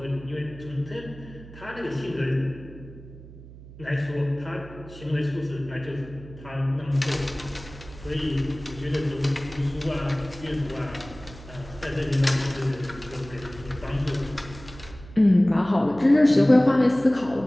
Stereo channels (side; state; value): right; noise; hum, 17 dB below the sound